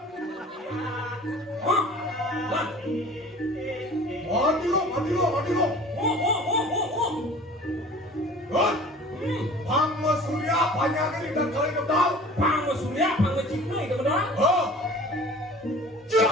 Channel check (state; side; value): normal; both; correlation 0.44